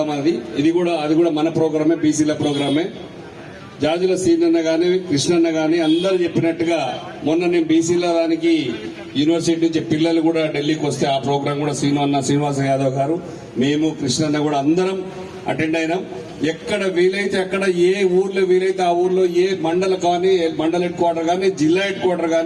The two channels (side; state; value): both; identical; correlation 1.00